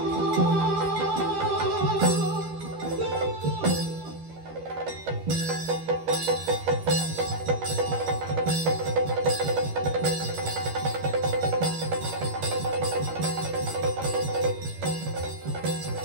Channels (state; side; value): late; left; 13 ms